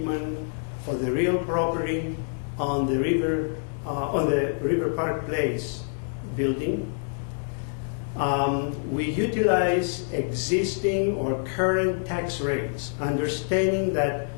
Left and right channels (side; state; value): right; silent; digital silence